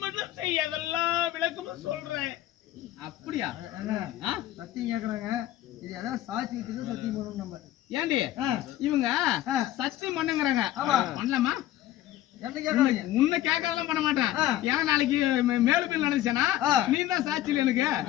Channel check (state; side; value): quieter; right; 13.7 dB